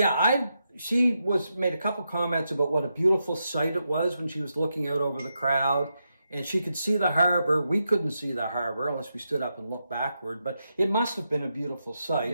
she made a couple comments about what a beautiful sight it was when she was looking out over the crowd, and she could see the harbor. We couldn't see the harbor unless we stood up and looked backward, but it must have been a beautiful sight.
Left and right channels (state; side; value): inverted; both; correlation -0.85